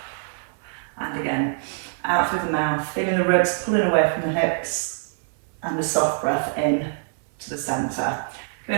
And again, out through the mouth, feeling the ribs pulling away from the hips, and a soft breath in to the centre.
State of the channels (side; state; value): left; silent; 58 dB below the other